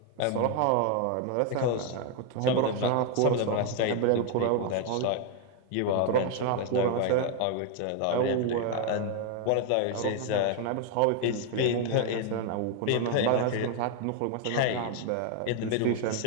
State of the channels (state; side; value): different; both; correlation 0.01